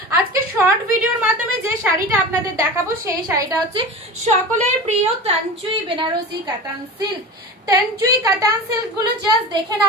আজকে শর্ট ভিডিওর মাধ্যমে যে শাড়িটা আপনাদের দেখাবো সেই শাড়িটা হচ্ছে সকলের প্রিয় তানচুই বেনারসি কাতান সিল্ক। তানচুই কাতান সিল্ক গুলো জাস্ট দেখে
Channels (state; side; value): normal; both; correlation 0.32